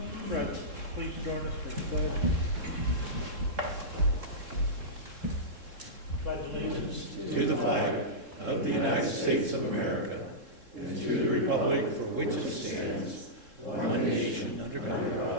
Fred, please join us for the pledge. Pledge allegiance to the flag of the United States of America and to the republic for which it stands, one nation under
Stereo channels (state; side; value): late; left; 3.7 ms